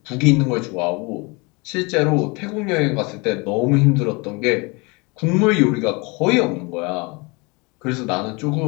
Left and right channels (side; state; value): right; quieter; 27.9 dB